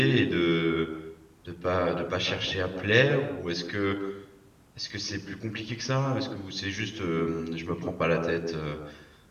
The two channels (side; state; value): both; identical; correlation 1.00